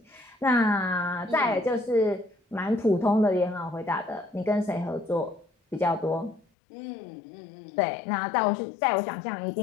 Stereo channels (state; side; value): drops out; right; at 6.5 s